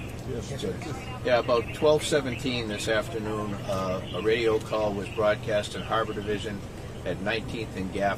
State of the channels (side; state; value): both; identical; correlation 1.00